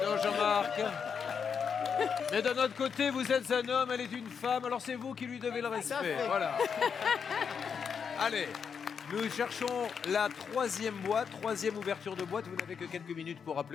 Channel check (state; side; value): quieter; right; 6.6 dB